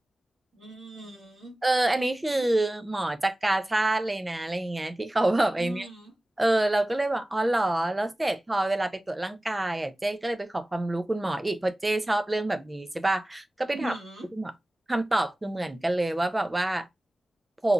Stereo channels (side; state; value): both; normal; correlation 0.97